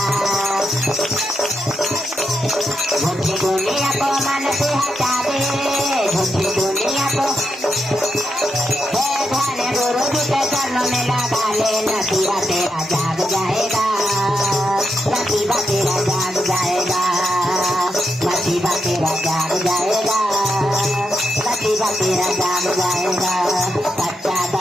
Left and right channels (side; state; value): both; normal; correlation 0.84